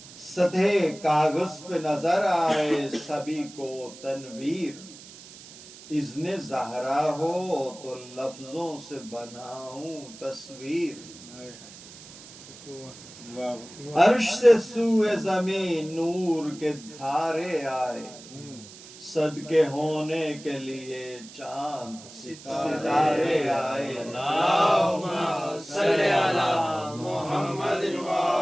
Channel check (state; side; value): noise; right; hiss, 18 dB below the sound